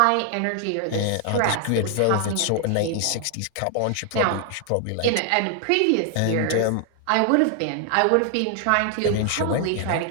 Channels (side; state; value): both; different; correlation 0.00